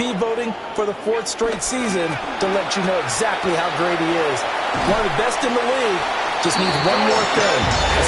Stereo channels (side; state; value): both; identical; correlation 1.00